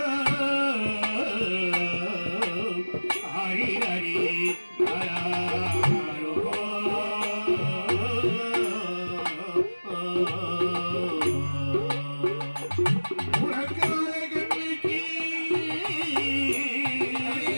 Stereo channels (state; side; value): inverted; both; correlation -1.00